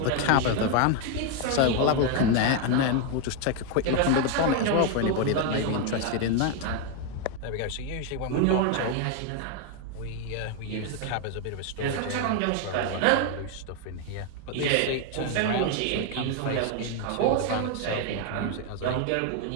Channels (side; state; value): both; different; correlation 0.01